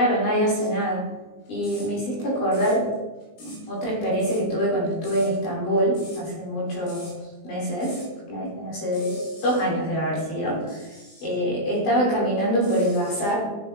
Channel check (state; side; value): late; right; 20 ms